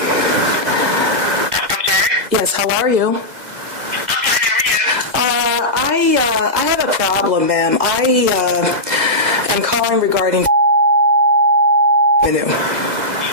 sorry? Yes, how are you? I'm fine, how are you? I have a problem, ma'am. I am calling regarding revenue.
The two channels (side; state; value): left; late; 2.0 ms